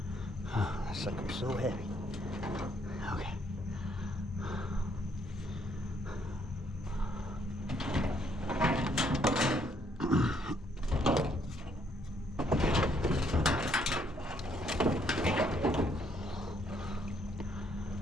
Oh, that sucker's so heavy. Okay.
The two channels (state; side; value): normal; both; correlation 0.69